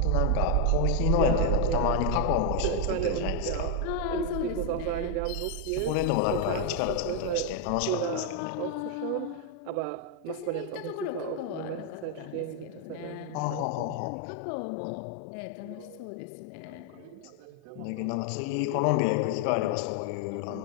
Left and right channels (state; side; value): different; both; correlation 0.01